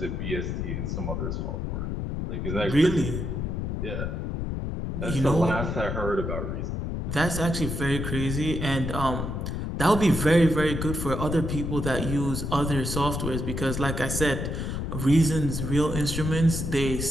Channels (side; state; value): left; noise; rumble, 3 dB below the sound